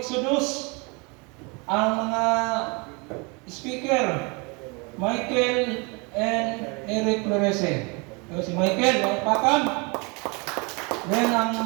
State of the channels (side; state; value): left; quieter; 29.8 dB